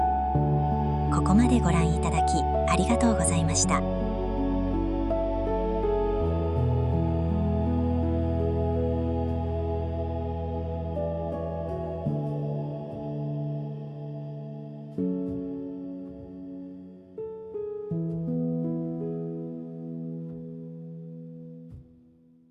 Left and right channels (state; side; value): identical; both; correlation 1.00